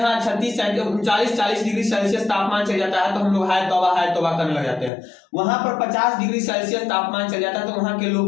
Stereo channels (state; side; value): drops out; right; at 4.9 s